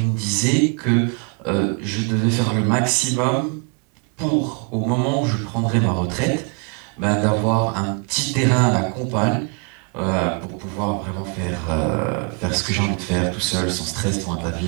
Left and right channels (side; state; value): left; quieter; 37.9 dB